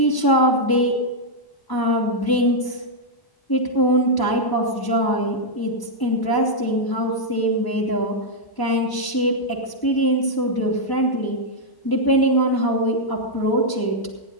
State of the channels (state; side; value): late; right; 1.0 ms